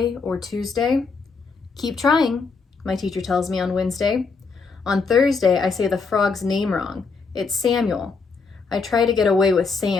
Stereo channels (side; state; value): right; quieter; 4.7 dB